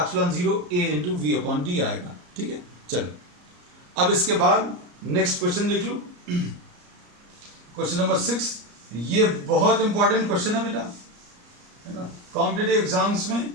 0 A into V upon D आएगा। ठीक है, चलो अब इसके बाद नेक्स्ट क्वेश्चन देख लो। क्वेश्चन नंबर 6, ये बहुत इंपॉर्टेंट क्वेश्चन है बेटा, है ना। कॉम्पिटिटिव एग्जाम्स में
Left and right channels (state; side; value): late; left; 34 ms